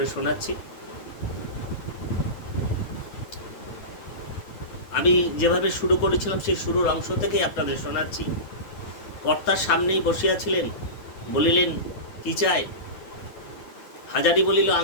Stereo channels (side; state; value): right; late; 9.2 ms